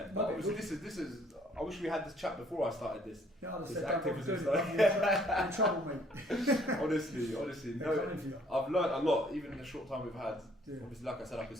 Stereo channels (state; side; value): normal; both; correlation 0.61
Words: But No, obviously this is. I wish we had this chat before I started this. Yeah, I'd have This said, don't bother activism doing it. stuff. You're in trouble, mate. honestly, They're no. coming for you. I've learned a lot, even in the short time we've had. Yeah. Obviously, like I said, I could